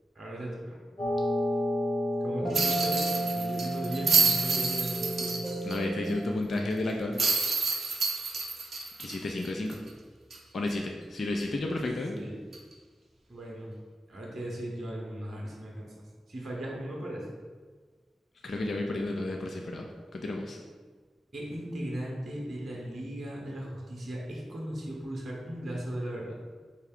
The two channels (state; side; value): normal; both; correlation 0.85